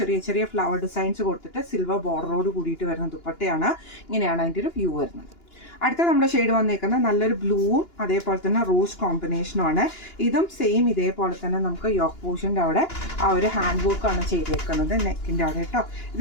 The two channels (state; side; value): late; right; 2.9 ms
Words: ചെറിയ ചെറിയ ഫ്ലവർ ഡിസൈൻസ് കൊടുത്തിട്ട് സിൽവർ ബോർഡറോട് കൂടിയിട്ട് വരുന്ന ദുപ്പട്ടയാണ്. ഇങ്ങനെയാണ് അതിൻ്റെ ഒരു വ്യൂ വരുന്നത്. അടുത്ത നമ്മുടെ ഷെയ്ഡ് വന്നേക്കുന്നത് നല്ലൊരു ബ്ലൂവും അതേപോലെ തന്നെ റോസ് കോമ്പിനേഷനുമാണ്. ഇതും സെയിം ഇതേപോലെ തന്നെ നമുക്ക് യോക്ക് പോർഷൻ്റെ അവിടെ ആ ഒരു ഹാൻഡ് വർക്കാണ് ചെയ്തേക്കുന്നത് നെക്കിൻ്റെ അവിടെ കേട്ടോ.